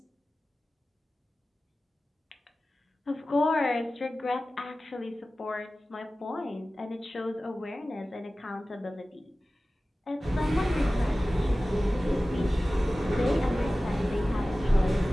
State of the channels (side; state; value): both; normal; correlation 0.96